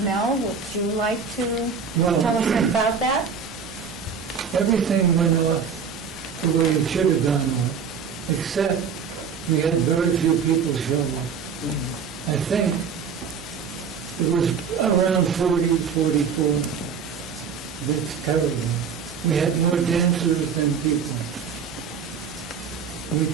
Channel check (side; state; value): left; quieter; 6.4 dB